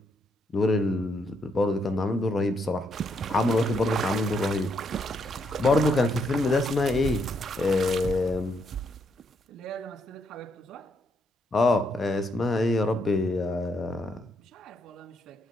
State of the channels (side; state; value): both; normal; correlation 0.76